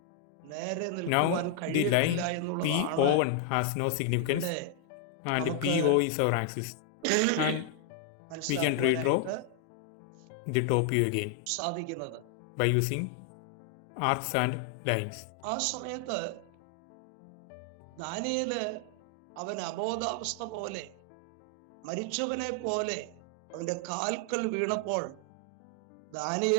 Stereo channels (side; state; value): both; different; correlation 0.00